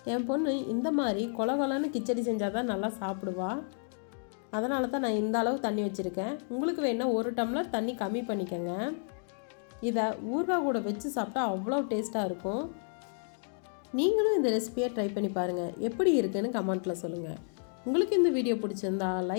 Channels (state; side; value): silent; right; 57 dB below the other